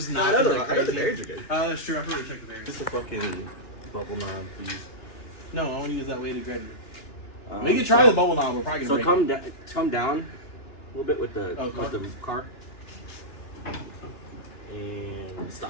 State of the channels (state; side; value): late; right; 2.9 ms